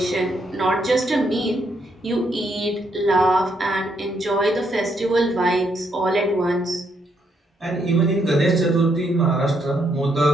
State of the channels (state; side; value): normal; both; correlation 0.75